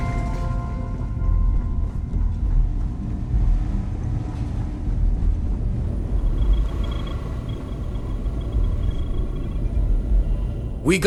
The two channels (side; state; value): both; identical; correlation 1.00